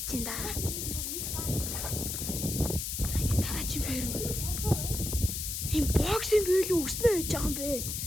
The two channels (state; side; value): noise; left; hiss, 3 dB below the sound